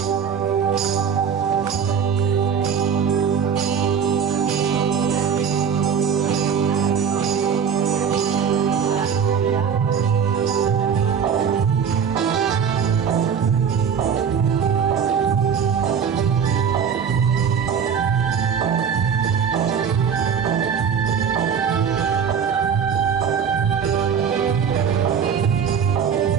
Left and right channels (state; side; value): quieter; left; 7.1 dB